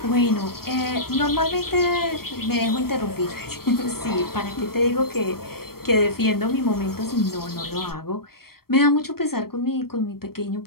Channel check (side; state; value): right; late; 0.94 ms